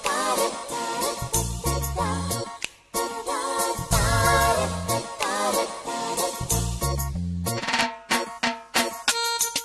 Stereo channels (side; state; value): both; identical; correlation 1.00